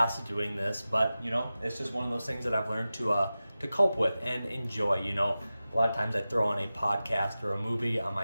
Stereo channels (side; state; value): both; inverted; correlation -0.95